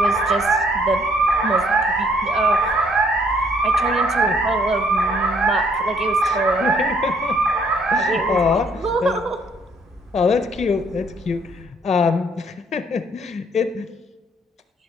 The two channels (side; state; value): both; normal; correlation 0.65